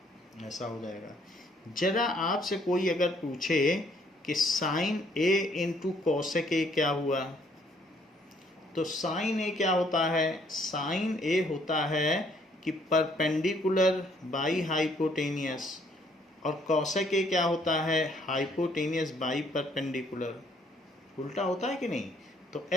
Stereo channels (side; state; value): both; normal; correlation 0.65